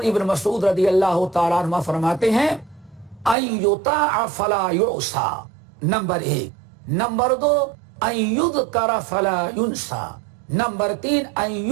ابن مسعود رضی اللہ تعالیٰ عنہ فرماتے ہیں ان یطاع فلا یعصى، نمبر 1۔ نمبر 2 ان یذکر فلا ینسى، نمبر 3 ان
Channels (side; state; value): left; drops out; at 3.4 s